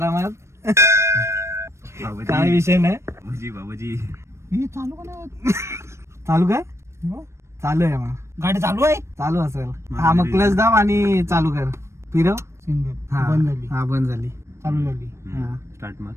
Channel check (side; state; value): left; late; 0.13 ms